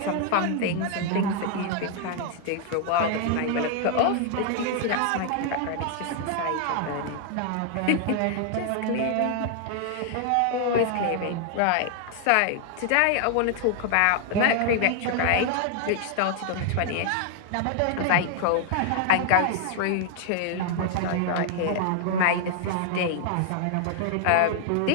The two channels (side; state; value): both; different; correlation 0.00